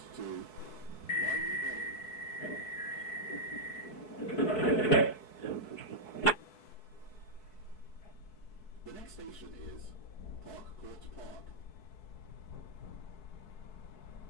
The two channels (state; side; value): late; right; 4.6 ms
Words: to Wiley Bay. The next station is Park Court Park.